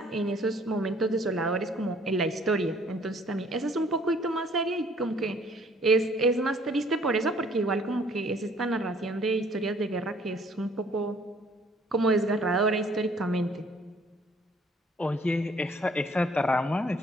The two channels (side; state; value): both; normal; correlation 0.59